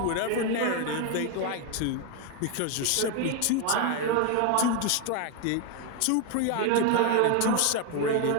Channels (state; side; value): different; both; correlation 0.01